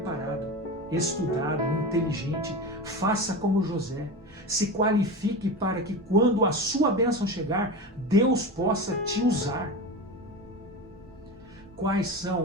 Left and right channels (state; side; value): normal; both; correlation 0.26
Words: estudado, inteligente. Faça como José. Se qualifique para que quando a sua bênção chegar, Deus possa te usar. Quais